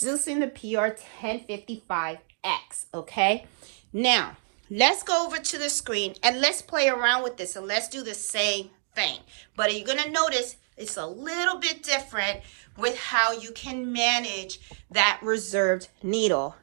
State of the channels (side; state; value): left; silent; digital silence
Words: the PR1055X, okay? Now, let's go over to the screen and let's play around with this and let's do the same thing. But you're going to notice it's a little bit different with how you can manage that reserved needle,